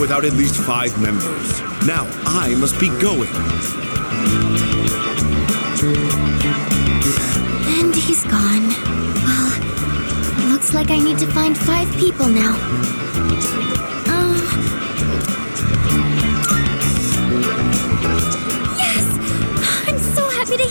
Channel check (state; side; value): inverted; both; correlation -1.00